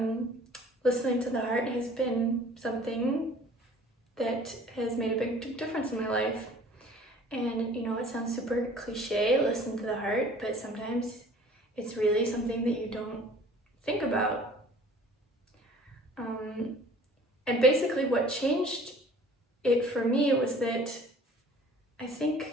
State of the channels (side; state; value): both; normal; correlation 0.50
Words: listening to the heart has been something that has made a big difference in my life. And it sounds super cliche, listen to the heart, but sometimes it's really something that you don't think about. And basically what changed it for me was that I